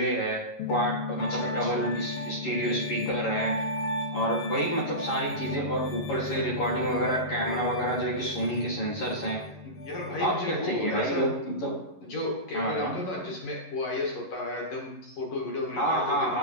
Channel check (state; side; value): late; right; 11 ms